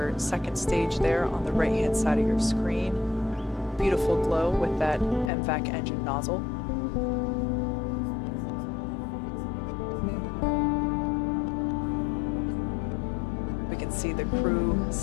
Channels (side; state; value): right; drops out; at 5.3 s